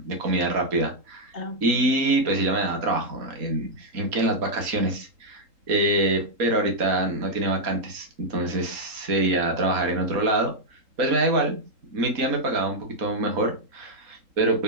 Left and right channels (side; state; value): left; late; 3.8 ms